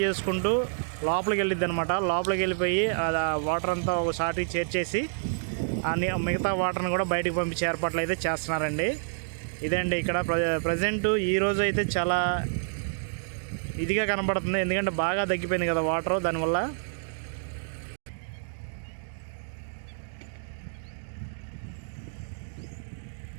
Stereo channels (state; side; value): silent; left; digital silence